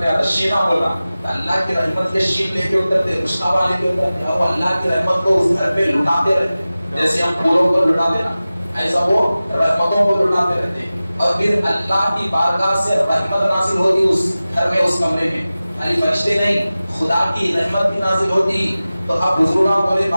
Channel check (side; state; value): both; inverted; correlation -0.96